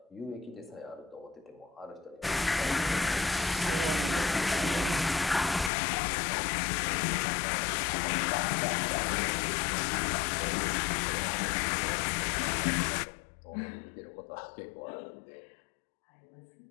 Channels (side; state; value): right; drops out; at 5.7 s